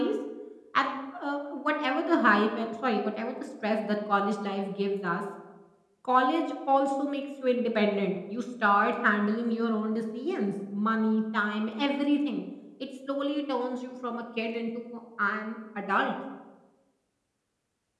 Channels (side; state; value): both; identical; correlation 1.00